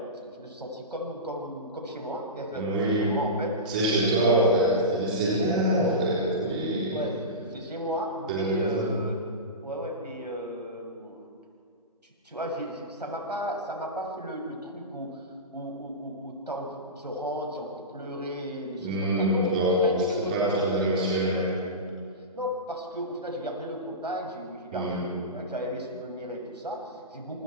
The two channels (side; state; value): both; normal; correlation -0.20